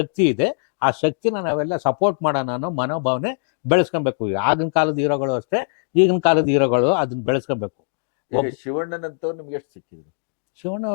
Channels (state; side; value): silent; right; digital silence